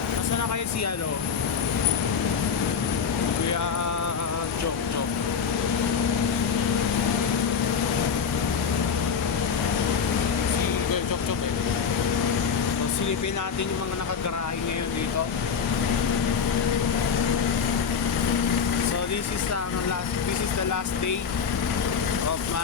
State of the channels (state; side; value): quieter; right; 6.5 dB